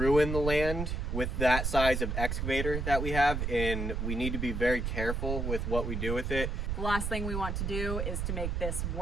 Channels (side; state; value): right; noise; rumble, 1 dB below the sound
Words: the land with that size of excavator that we have, and we need to be very careful with what we do with it. The last thing we want to do is to make this